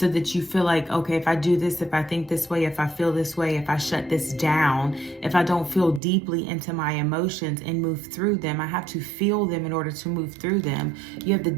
that you feel like, okay, if I do this, if I think this way, if I feel this way, if I shut this down, if I don't feel deeply into my emotions and move through them, I have to feel them in order to move through them. You have the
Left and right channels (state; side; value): drops out; left; at 6.0 s